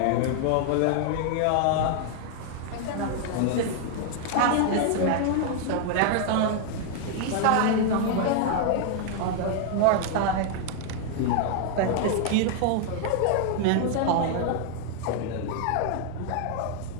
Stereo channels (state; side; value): different; both; correlation 0.00